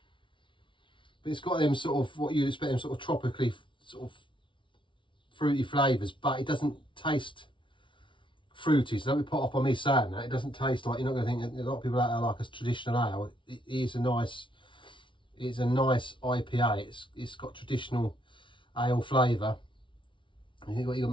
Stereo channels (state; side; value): late; right; 0.24 ms